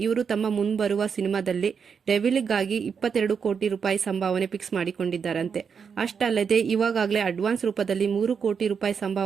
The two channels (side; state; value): left; quieter; 6.4 dB